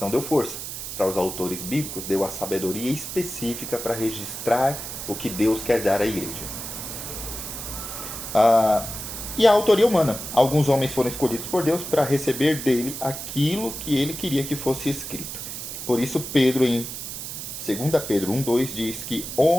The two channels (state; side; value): noise; right; hiss, 8 dB below the sound